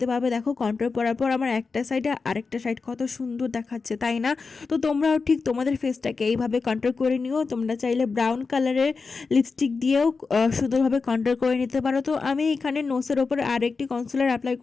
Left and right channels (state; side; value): quieter; right; 4.6 dB